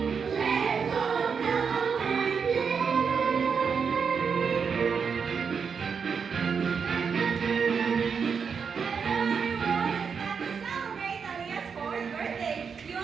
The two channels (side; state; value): left; quieter; 6.1 dB